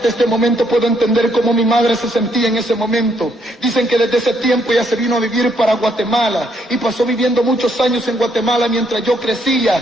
este momento puedo entender cómo mi madre se sentía en ese momento. Dicen que desde ese tiempo ella se vino a vivir para Guatemala y pasó viviendo muchos años en Guatemala mientras yo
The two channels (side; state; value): both; normal; correlation 0.72